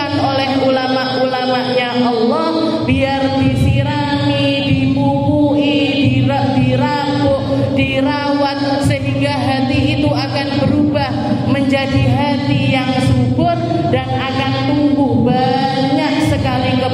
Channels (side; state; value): both; identical; correlation 1.00